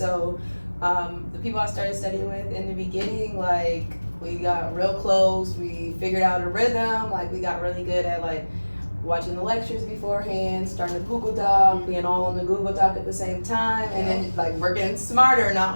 the people I started studying with in the beginning, like, we got real close. We figured out a rhythm. Like, we got really good at, like, watching the lectures beforehand, starting the Google Doc, being all on the Google Doc at the same time, and then like working smarter, not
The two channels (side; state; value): both; inverted; correlation -1.00